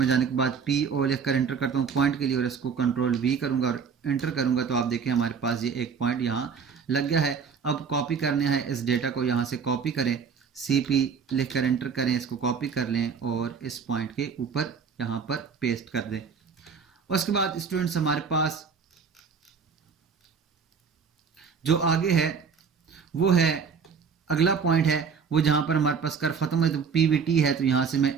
जाने के बाद पी ओ लिख कर एंटर करता हूँ पॉइंट के लिए और इसको कंट्रोल वी करूँगा और एंटर करूँगा। तो आप देखें हमारे पास ये एक पॉइंट यहाँ लग गया है। अब कॉपी करने है इस डेटा को, यहाँ से कॉपी करें, सी पी लिख कर एंटर करें, इसको कॉपी कर लें और इस पॉइंट के ऊपर यहाँ पर पेस्ट कर दें। उसके बाद स्टूडेंट्स हमारे पास जो आगे है वो है अगला पॉइंट है वो जहाँ पर हमारे पास कर्व खत्म है। तो पीवीटी है। तो यहाँ से मैं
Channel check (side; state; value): left; quieter; 6.1 dB